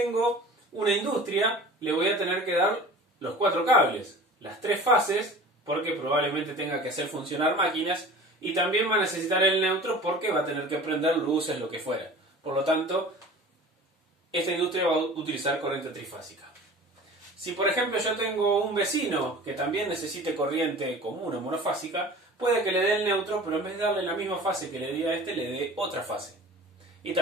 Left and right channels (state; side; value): normal; both; correlation 0.41